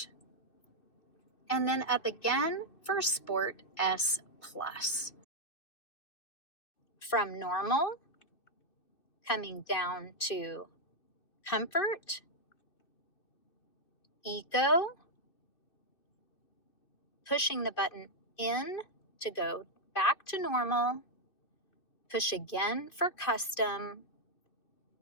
and then up again for Sport S+. From normal, coming down to comfort, eco, pushing the button in to go back to normal, push again for custom,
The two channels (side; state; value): right; late; 2.6 ms